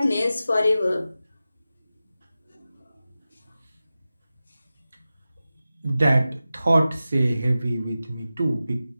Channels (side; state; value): both; inverted; correlation -0.94